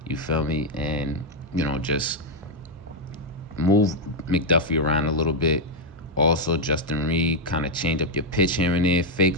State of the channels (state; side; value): normal; both; correlation 0.01